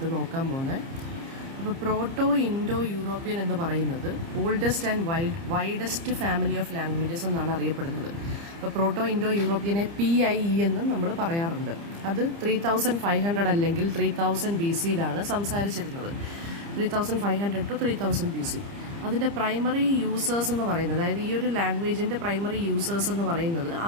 നോക്കാൻ പോകുന്നത്. അപ്പോൾ പ്രോട്ടോ ഇൻഡോ യൂറോപ്യൻ എന്ന് പറയുന്നത് oldest and widest family of languages എന്നാണ് അറിയപ്പെടുന്നത്. അപ്പോൾ പ്രോട്ടോ ഇൻഡോ യൂറോപ്യനെ PIE എന്നും നമ്മൾ പറയാറുണ്ട്. അത് 3500 അല്ലെങ്കിൽ 3000 BC-യിലാണ് സംസാരിച്ചിരുന്നത്. 3500 to 3000 BC. അതിൻ്റെ പ്രൈമറി യൂസേഴ്സ് എന്ന് പറയുന്നത്, അതായത് ഈ ഒരു ലാംഗ്വേജിൻ്റെ പ്രൈമറി യൂസേഴ്സ് എന്ന് പറയുന്നത്,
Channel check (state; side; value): late; left; 30 ms